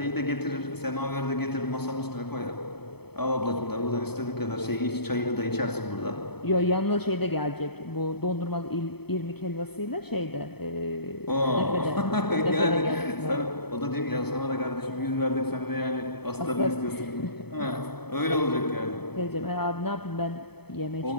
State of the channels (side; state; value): right; late; 0.97 ms